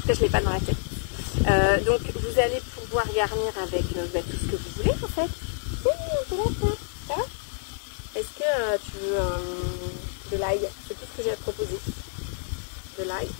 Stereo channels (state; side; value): silent; right; 60 dB below the other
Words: cas, je l'ai pas dans la tête. Donc vous allez pouvoir garnir avec tout ce que vous voulez en fait. Ça va? Est-ce que tu veux de l'ail? C'est tout ce que j'ai à te proposer. De l'ail.